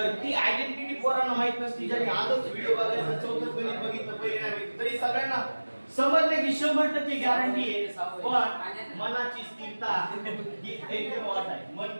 ती आयडेंटिटी पोरांना माहित नसती ज्यांनी आजच व्हिडिओ बघायचा चौथं गणित बघितलं पहिले नाही तरी सगळ्यांना समजण्याची 100% गॅरंटी आहे पण मनाची स्थिरता ही एकदम वाट आहे मन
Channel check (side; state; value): both; inverted; correlation -1.00